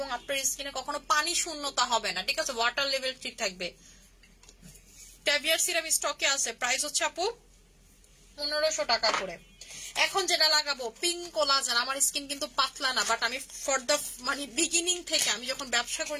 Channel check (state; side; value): identical; both; correlation 1.00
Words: আপনার স্কিনে কখনো পানি শূন্যতা হবে না, ঠিক আছে। ওয়াটার লেভেল ঠিক থাকবে। ট্যাভিয়ার সিরাম স্টকে আছে, প্রাইস হচ্ছে আপু 1500 টাকা করে। এখন যেটা লাগাবো পিঙ্ক কোলাজেন। আমার স্কিন কিন্তু পাতলা না, বাট আমি ফর দ্য মানে বিগিনিং থেকে, আমি যখন ব্যবসা করি